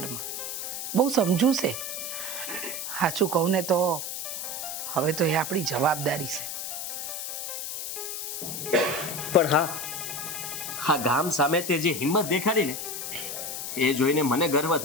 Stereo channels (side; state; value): left; noise; hiss, 5 dB below the sound